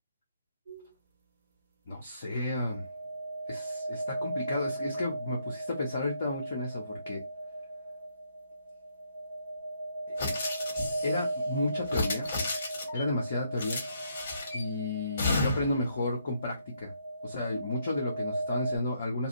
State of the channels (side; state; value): both; inverted; correlation -0.74